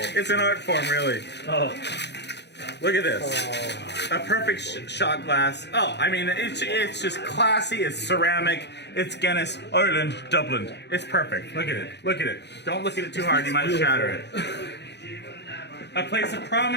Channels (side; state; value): right; late; 0.50 ms